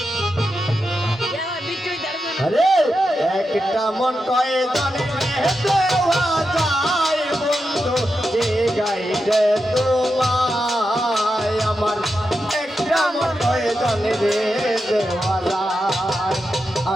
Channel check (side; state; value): both; normal; correlation 0.88